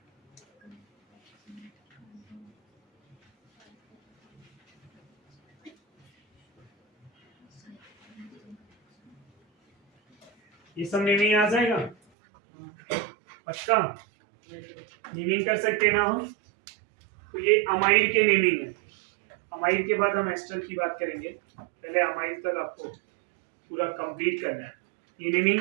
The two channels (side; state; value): left; drops out; at 12.0 s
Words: ये सब नेमिंग आ जाएगा पक्का, नेमिंग कर सकते ना हम। तो ये अमाइड के नेमिंग है। अमाइड के बाद हम एस्टर की बात करेंगे, पहले अमाइड तक आपको पूरा कंप्लीट करना है। ये